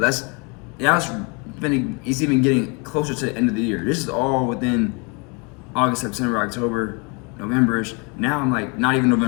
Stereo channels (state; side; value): quieter; right; 31.9 dB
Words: it's even getting closer to the end of the year. This is all within August, September, October, November-ish. Now I'm like, not even